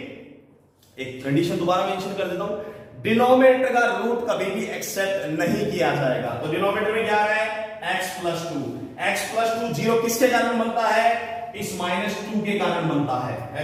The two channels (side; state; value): both; identical; correlation 1.00